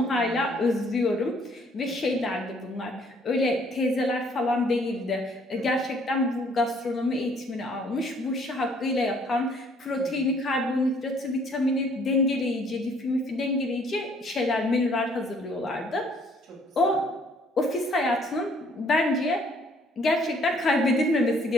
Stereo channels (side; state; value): both; normal; correlation 0.62